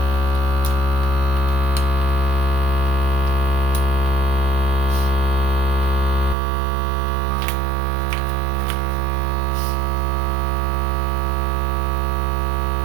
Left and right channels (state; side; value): drops out; left; at 6.4 s